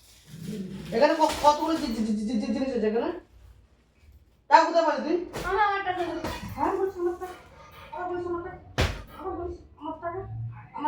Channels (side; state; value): both; identical; correlation 1.00